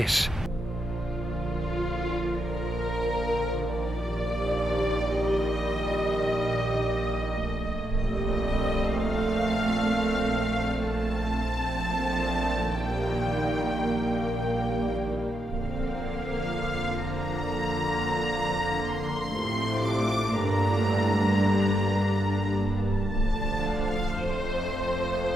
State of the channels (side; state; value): both; normal; correlation 0.83